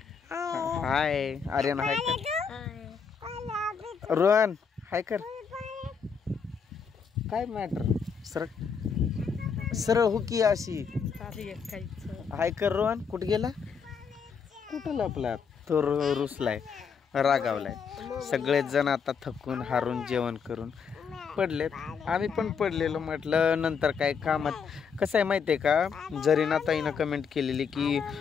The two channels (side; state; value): right; quieter; 6.2 dB